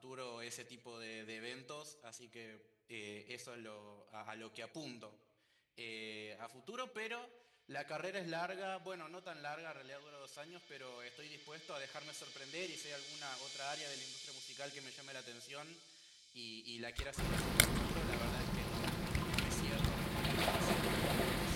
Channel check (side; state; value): both; identical; correlation 1.00